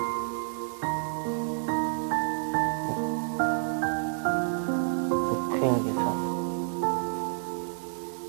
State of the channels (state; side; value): silent; left; 58 dB below the other